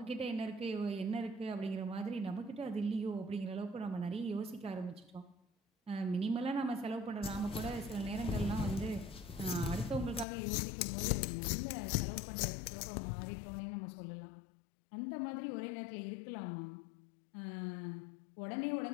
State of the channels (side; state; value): right; drops out; at 10.2 s